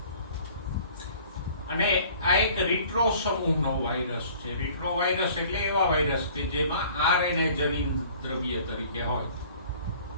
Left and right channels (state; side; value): inverted; both; correlation -0.51